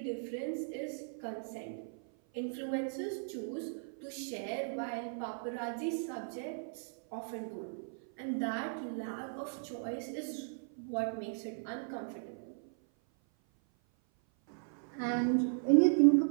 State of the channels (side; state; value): left; silent; 53 dB below the other